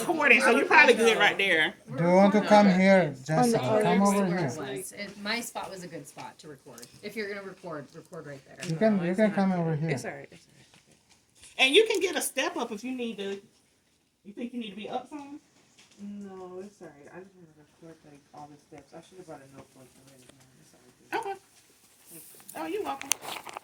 so you're probably good right there. Do you want to come here, Jessica? Come over Where here. it was. My spot was a good spot to record. If you're gonna record right there. You can come over here. It's alright. And you can get a step up if you need to. You think you need to be up some? No, it's alright. I just want to record like all the steps. I should have brought a notebook already. It's alright. Okay. Oh, you're welcome.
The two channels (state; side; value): identical; both; correlation 1.00